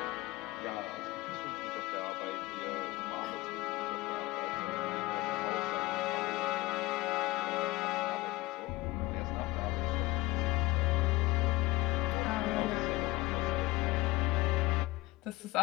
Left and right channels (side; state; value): right; quieter; 19.9 dB